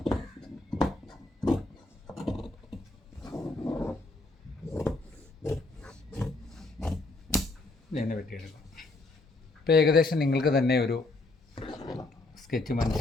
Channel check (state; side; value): quieter; right; 3.2 dB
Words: ഇങ്ങനെ വെട്ടിയെടുക്കാം. ഇപ്പോൾ ഏകദേശം നിങ്ങൾക്ക് തന്നെ ഒരു സ്കെച്ച്